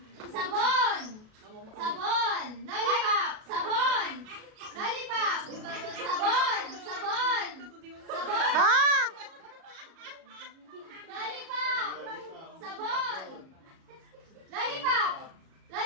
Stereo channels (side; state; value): left; late; 37 ms